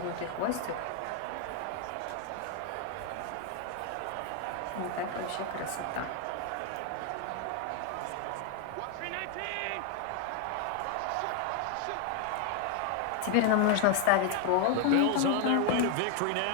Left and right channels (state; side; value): different; both; correlation 0.01